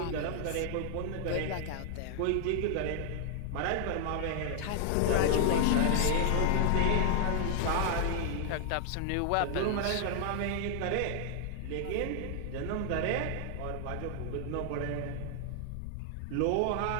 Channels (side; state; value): both; different; correlation 0.00